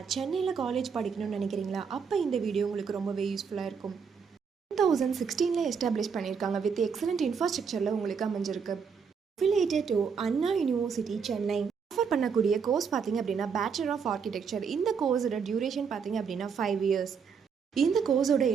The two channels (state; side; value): quieter; left; 6.2 dB